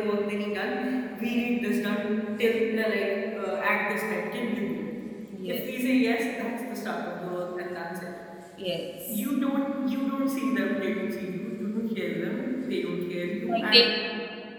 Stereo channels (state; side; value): identical; both; correlation 1.00